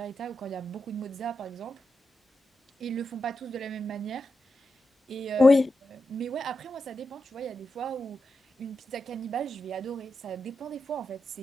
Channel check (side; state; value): both; normal; correlation 0.88